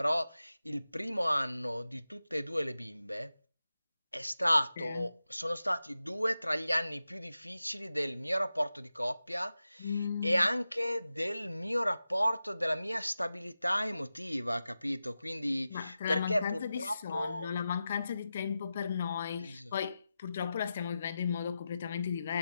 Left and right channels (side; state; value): both; inverted; correlation -0.92